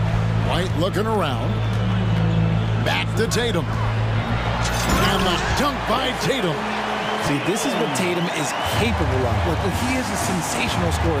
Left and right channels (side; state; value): both; identical; correlation 1.00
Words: White looking around. Back to Tatum. And the dunk by Tatum. See, this is what Tatum is capable of. Look, he is a sensational